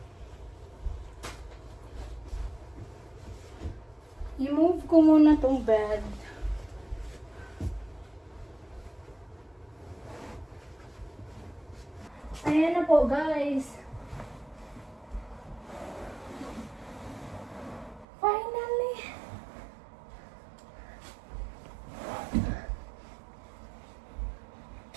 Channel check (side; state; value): left; drops out; at 18.1 s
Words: I-move ko muna tong bed. Ayan na po guys. Finally!